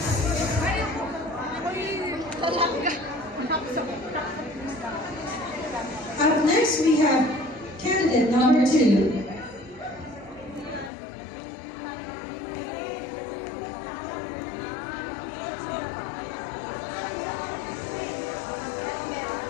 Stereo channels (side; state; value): right; drops out; at 10.9 s